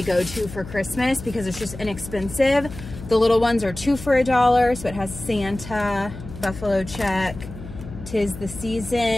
go-to for Christmas because it's just inexpensive. The little ones are 2 for $1. So it has Santa, buffalo check, 'tis the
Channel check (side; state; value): left; noise; hum, 13 dB below the sound